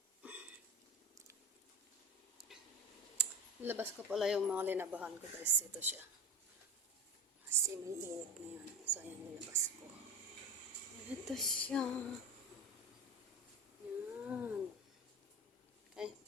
Labas ko pala yung mga linabahan ko guys. Ito siya. Kasi may init ngayon. So ayan, nilabas ko. Ito siya. Yan. Ay,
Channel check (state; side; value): normal; both; correlation 0.28